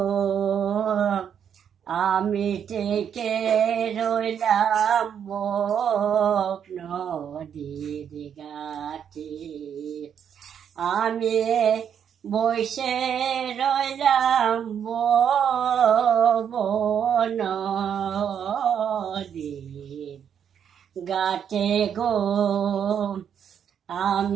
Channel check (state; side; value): quieter; left; 8.3 dB